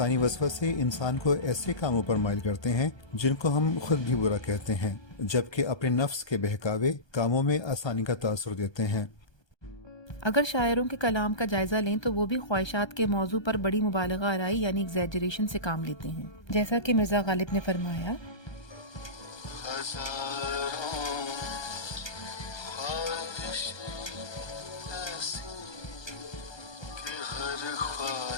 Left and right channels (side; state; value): right; late; 1.3 ms